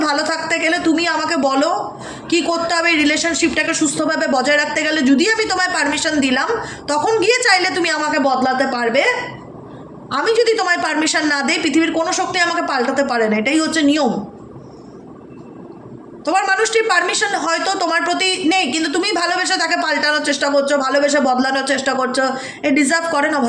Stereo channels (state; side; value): identical; both; correlation 1.00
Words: ভালো থাকতে গেলে, তুমি আমাকে বলো কি করতে হবে রিলেশনশিপটাকে সুস্থভাবে বজায় রাখতে গেলে, যদি আমি তোমায় পারমিশন দিলাম, তখন গিয়ে চাইলে তুমি আমাকে বদলাতে পারবে। আমি যদি তোমায় পারমিশন না দিই, পৃথিবীর কোনো শক্তি আমাকে পাল্টাতে পারে না। এটাই হচ্ছে নিয়ম। তোমার মানুষটির পারমিশন হয়তো তোমার প্রতি নেই, কিন্তু তুমি ভালোবেসে তাকে পাল্টানোর চেষ্টা করছো, ভালোবেসে বদলানোর চেষ্টা করছো। এ ডিজার্ভ করে না